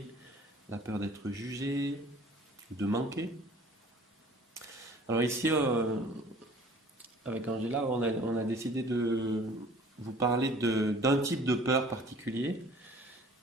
la peur d'être jugé, de manquer. Alors ici, avec Angela, on a décidé de vous parler d'un type de peur particulier.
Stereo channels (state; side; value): normal; both; correlation 0.50